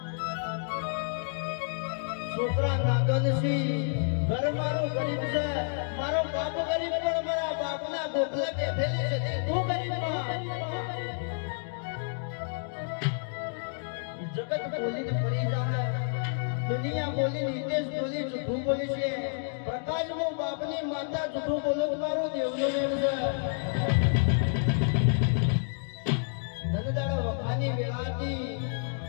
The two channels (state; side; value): silent; right; digital silence